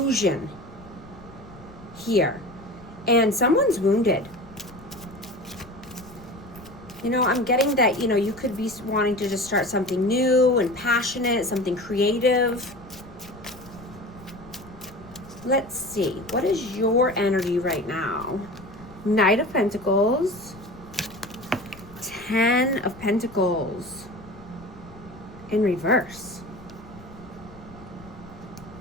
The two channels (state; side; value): noise; left; rumble, 21 dB below the sound